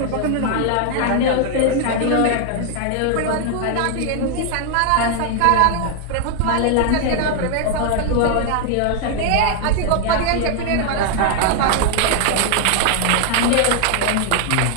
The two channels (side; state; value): both; different; correlation 0.00